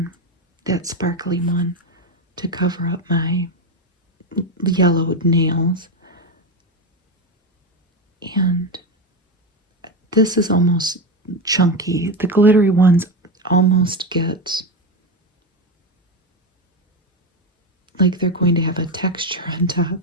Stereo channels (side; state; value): both; normal; correlation 0.14